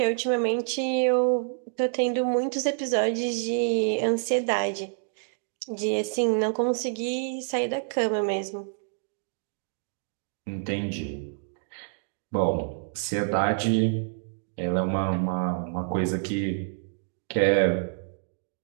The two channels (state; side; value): silent; left; digital silence